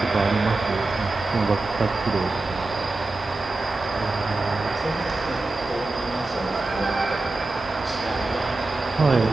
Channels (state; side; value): quieter; left; 3.2 dB